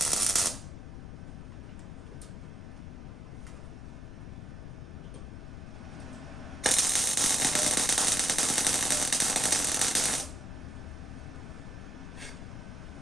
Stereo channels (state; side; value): noise; left; rumble, 10 dB below the sound